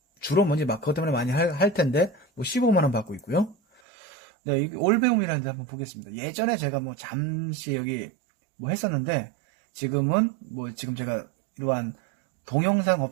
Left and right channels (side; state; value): left; drops out; at 3.8 s